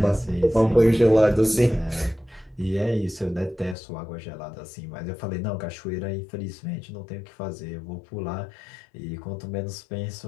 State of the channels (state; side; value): drops out; right; at 3.8 s